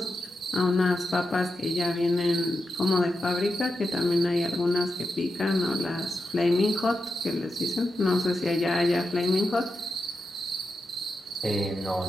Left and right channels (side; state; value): both; normal; correlation 0.88